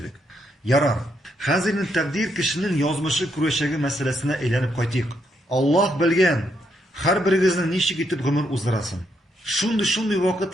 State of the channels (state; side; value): normal; both; correlation 0.77